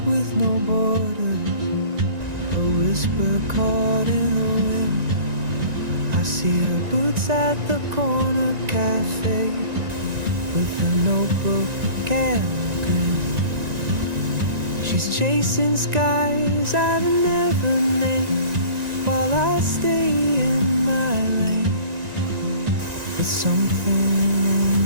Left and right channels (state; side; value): late; left; 1.9 ms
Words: with no borders, a whisper caught in the wind. I see her boots at the corner cafe with a notebook and a grin. She's chasing skies I've never named while I stay in my lane. But something in